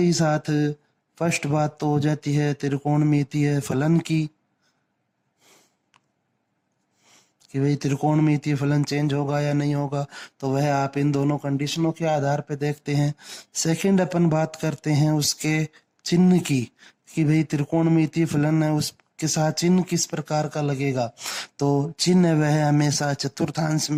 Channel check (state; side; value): identical; both; correlation 1.00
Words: साथ फर्स्ट बात तो हो जाती है त्रिकोणमितीय फलन की, कि भाई त्रिकोणमितीय फलन चेंज होगा या नहीं होगा, तो वह आप इन दोनों कंडीशनों के आधार पे देखते हैं। सेकंड अपन बात करते हैं उसके चिन्ह की, कि भाई त्रिकोणमितीय फलन है उसके साथ चिन्ह किस प्रकार का लगेगा। तो चिन्ह वह हमेशा चतुर्थांश